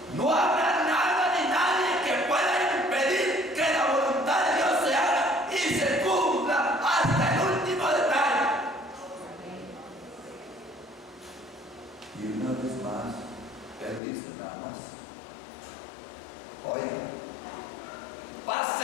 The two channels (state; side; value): drops out; right; at 14.0 s